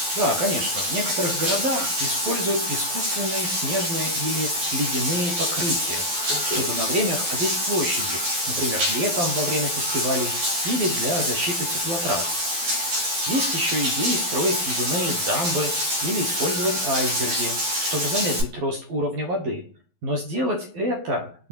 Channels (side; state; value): left; late; 12 ms